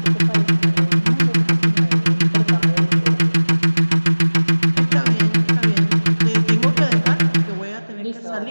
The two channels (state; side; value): inverted; both; correlation -1.00